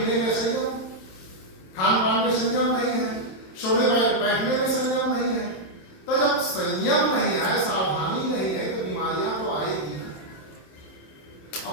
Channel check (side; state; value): right; late; 27 ms